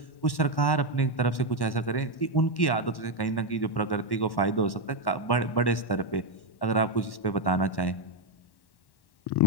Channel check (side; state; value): right; late; 1.1 ms